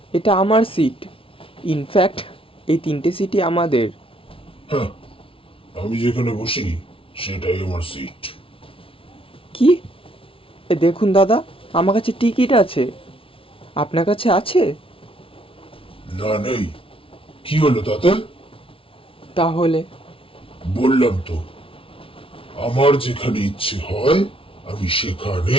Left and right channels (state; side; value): late; right; 0.26 ms